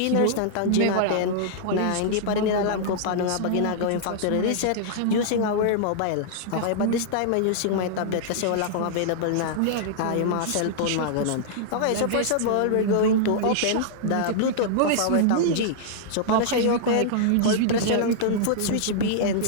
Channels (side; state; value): both; different; correlation -0.01